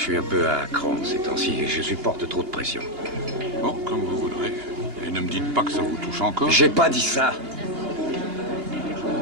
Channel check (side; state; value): left; late; 2.8 ms